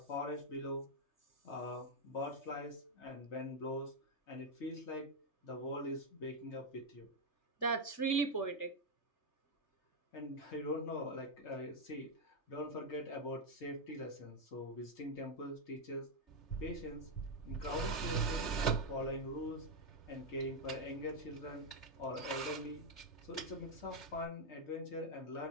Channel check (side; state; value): right; late; 3.3 ms